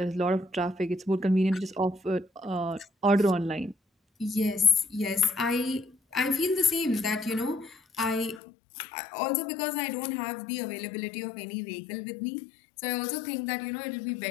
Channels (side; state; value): right; drops out; at 8.4 s